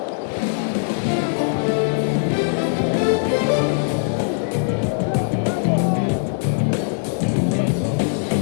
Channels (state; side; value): silent; right; digital silence